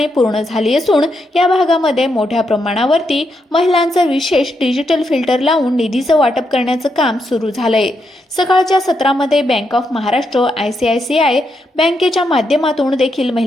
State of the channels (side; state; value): both; normal; correlation 0.81